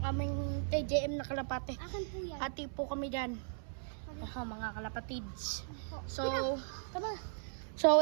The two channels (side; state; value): left; silent; 53 dB below the other